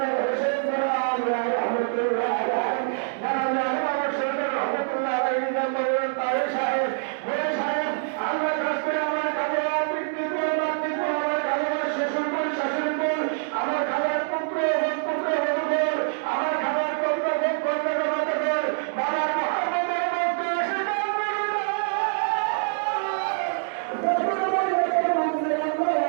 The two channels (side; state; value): left; silent; digital silence